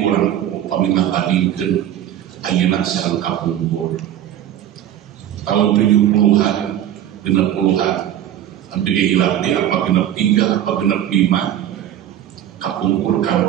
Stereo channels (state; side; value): quieter; left; 11.2 dB